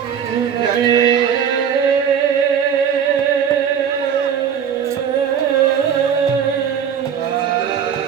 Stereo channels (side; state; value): left; quieter; 8.0 dB